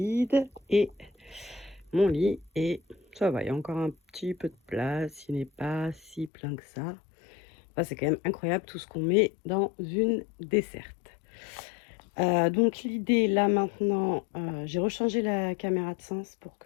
et mon lit est... Ça va, il y a encore un petit peu de place, il n'est pas si plein que ça. Enfin, c'est quand même incroyable tout ce qu'on met dans une desserte. Donc l'idée là maintenant, j'ai rechangé la caméra de sens pour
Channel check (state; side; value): drops out; right; at 6.3 s